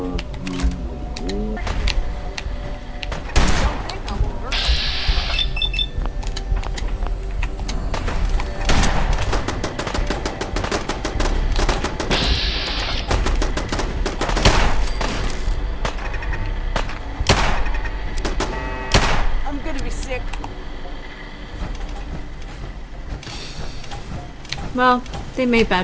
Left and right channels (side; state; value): both; identical; correlation 1.00